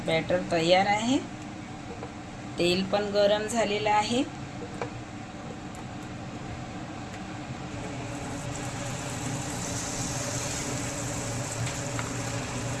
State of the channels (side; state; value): both; identical; correlation 1.00